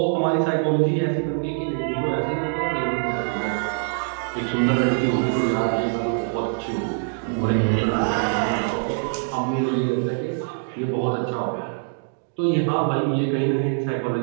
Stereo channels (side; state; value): left; silent; digital silence